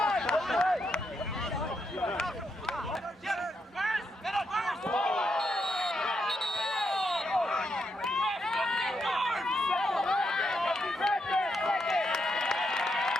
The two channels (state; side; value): normal; both; correlation 0.81